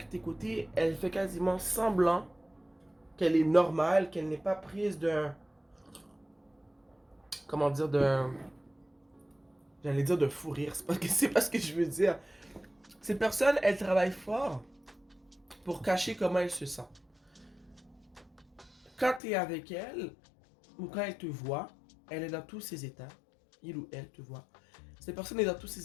côtés, elle fait quasiment semblant qu'elle est normale, qu'elle n'est pas prise d'un... comment dire, d'un... j'allais dire de fou rire, c'est pas ce que je veux dire. Cette personne, elle travaille fort pour cacher comment elle se sent. Quand tu es avec elle, ou quand elle te voit, elle est dans tous ses états. Il ou elle te voit. Cette personne est dans tous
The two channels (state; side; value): drops out; right; at 19.2 s